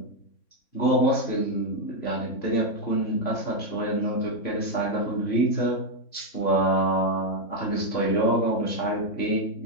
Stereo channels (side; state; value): right; late; 3.6 ms